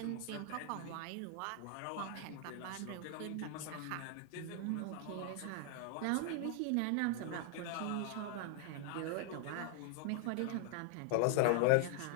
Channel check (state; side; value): different; both; correlation 0.00